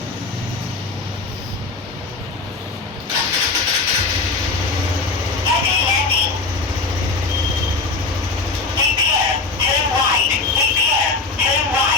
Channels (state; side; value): quieter; right; 3.9 dB